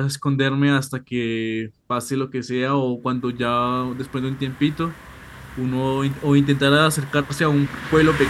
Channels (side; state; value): both; identical; correlation 1.00